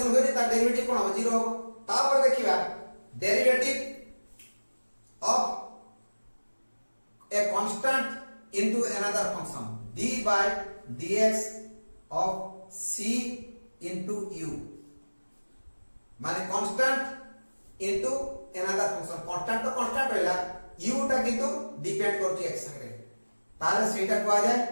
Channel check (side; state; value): both; inverted; correlation -1.00